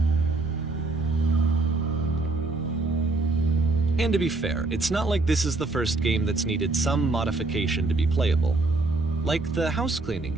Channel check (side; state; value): left; quieter; 3.3 dB